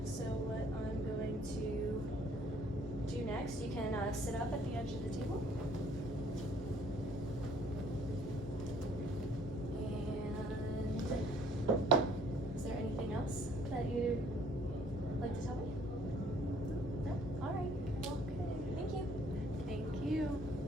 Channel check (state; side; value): normal; both; correlation 0.59